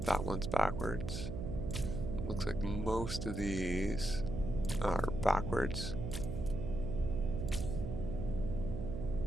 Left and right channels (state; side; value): noise; right; hum, 5 dB below the sound